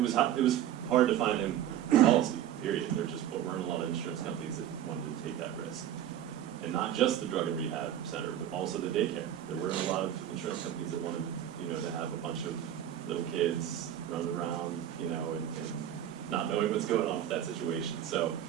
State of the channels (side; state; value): left; quieter; 11.0 dB